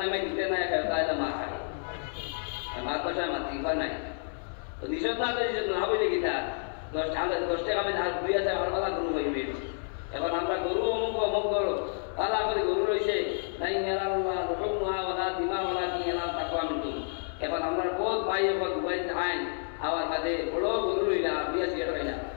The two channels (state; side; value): silent; right; 58 dB below the other